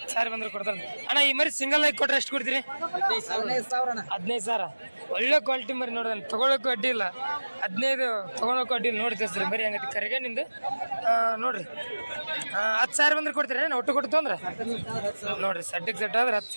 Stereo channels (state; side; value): inverted; both; correlation -1.00